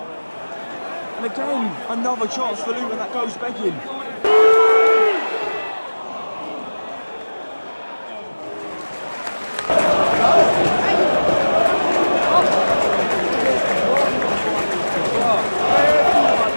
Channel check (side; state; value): both; inverted; correlation -1.00